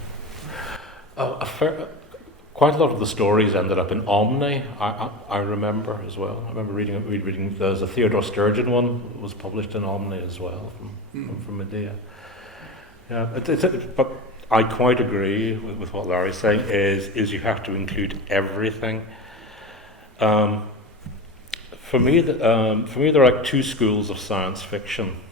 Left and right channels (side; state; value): both; normal; correlation 0.26